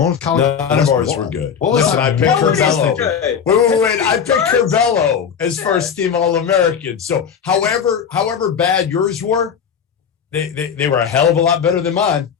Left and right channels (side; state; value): right; quieter; 7.4 dB